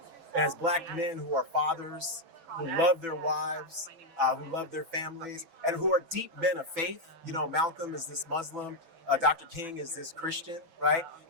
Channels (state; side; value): late; left; 6.0 ms